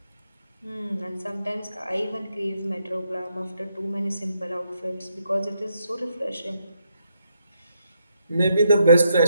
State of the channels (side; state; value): both; inverted; correlation -0.78